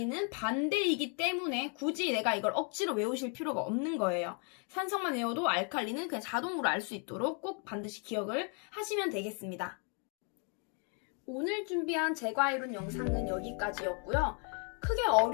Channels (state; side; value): quieter; right; 39.3 dB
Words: 반대이기 때문에 굳이 내가 이걸 억지로 외우실 필요가 없는 거예요. 산성만 외워도 알칼리는 그냥 자동으로 알 수 있도록 꼭 반드시 기억을 하시면 되겠습니다. 오늘 준비한 제과이론 영상은 여기까지였고요. 크게